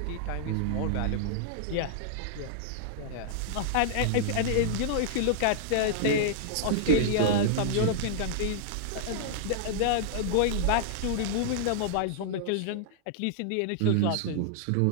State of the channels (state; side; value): different; both; correlation -0.01